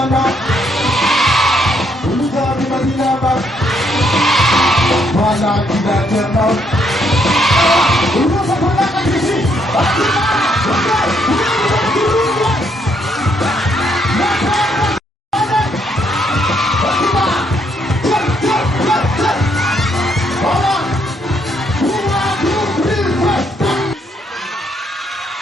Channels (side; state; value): both; normal; correlation 0.72